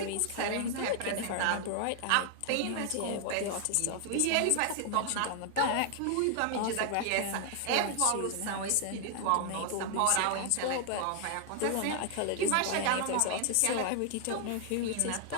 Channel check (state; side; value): different; both; correlation 0.00